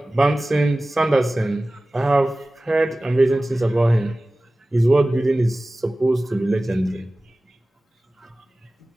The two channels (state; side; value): normal; both; correlation 0.97